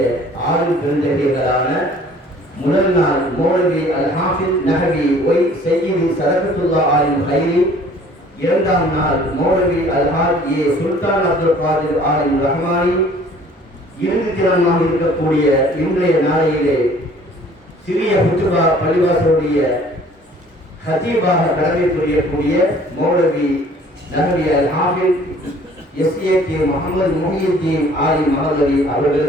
6 பெருந்தகைகளான முதல் நாள் மௌலவி அல் ஹாஃபிஸ் நஹவி ஒய் சையீது சதகத்துல்லா ஆலிம் ஹைரி, இரண்டாம் நாள் மௌலவி அல் ஹாஜ் ஏ சுல்தான் அப்துல் காதிர் ஆலிம் ரஹ்மானி, இறுதி தினமாக இருக்கக்கூடிய இன்றைய நாளையிலே சிறிய ஹுத்துபா பள்ளிவாசலுடைய ஹதீபாக கடமை புரியக்கூடிய மௌலவி நஹவி அல் ஹாஃபிஸ் எஸ்ஏகே முகமது முஹியுத்தீன் ஆலிம் மஹல்லி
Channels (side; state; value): both; normal; correlation 0.53